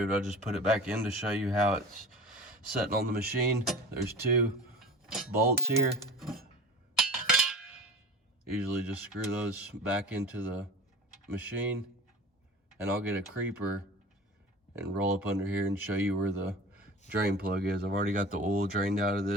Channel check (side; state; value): both; normal; correlation 0.35